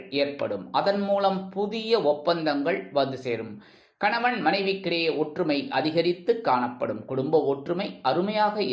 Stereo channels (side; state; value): both; identical; correlation 1.00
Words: ஏற்படும். அதன் மூலம் புதிய ஒப்பந்தங்கள் வந்து சேரும். கணவன் மனைவிக்கிடையே ஒற்றுமை அதிகரித்து காணப்படும். குடும்ப ஒற்றுமை அருமையாக